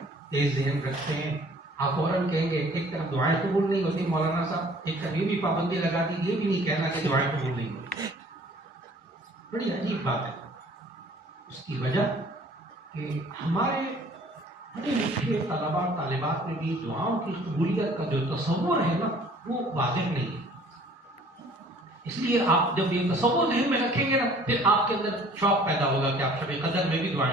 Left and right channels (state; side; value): normal; both; correlation 0.53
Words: تیز ذہن رکھتے ہیں, آپ فوراً کہیں گے ایک طرف دعائیں قبول نہیں ہوتی مولانا صاحب, ایک طرف یہ بھی پابندی لگا دی, یہ بھی نہیں کہنا کہ دعائیں قبول نہیں ہوتی. بڑی عجیب بات ہے. اس کی وجہ کہ ہمارے پڑھے لکھے طلباء طالبات میں بھی دعاؤں کی قبولیت کا جو تصور ہے نا وہ واضح نہیں ہے. اس لیے آپ جب یہ تصور ذہن میں رکھیں گے نا پھر آپ کے اندر شوق پیدا ہوگا کہ آپ شب قدر میں بھی